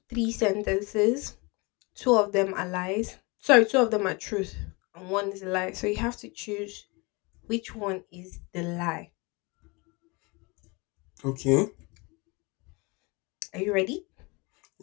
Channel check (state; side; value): quieter; right; 27.4 dB